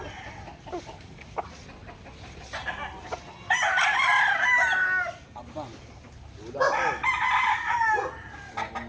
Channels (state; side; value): identical; both; correlation 1.00